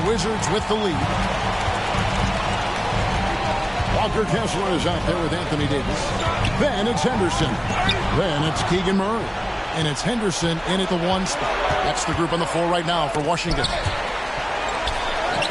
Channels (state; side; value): identical; both; correlation 1.00